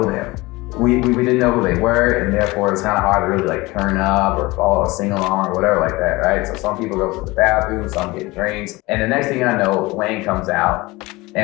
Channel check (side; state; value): right; quieter; 21.8 dB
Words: them. We didn't know who they were, and therefore it's kind of hard to really like turn up or follow a sing along or whatever like that, right? So some people go to the bathroom, some get drinks, and the next thing I know, Wayne comes out,